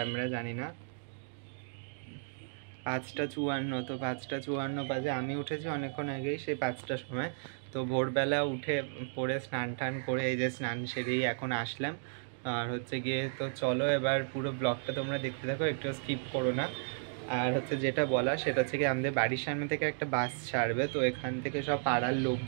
জানি না, 5:54। তো 5:54 বাজে। আমি উঠেছি অনেকক্ষণ আগেই, সেই 5টার সময়। তো ভোরবেলা উঠে পরে স্নান টান করে এই যে স্নান সেরেই এখন আসলাম। আর হচ্ছে গিয়ে তো চলো এবার পুরো ব্লগটা তোমরা দেখতে থাকো, একটু স্কিপ করো না। আর হচ্ছে যেটা বলা সেটা হচ্ছে কি, আমাদের বাড়ির সামনে থেকে একটা বাস ছাড়বে। তো এখান থেকে সব পাড়ার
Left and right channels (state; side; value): silent; left; digital silence